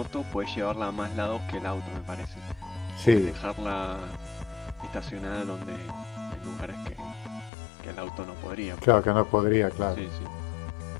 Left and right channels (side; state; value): right; drops out; at 7.5 s